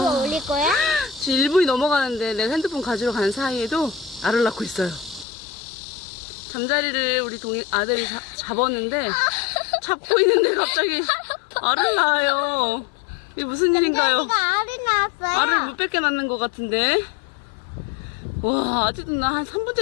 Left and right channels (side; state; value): right; drops out; at 5.2 s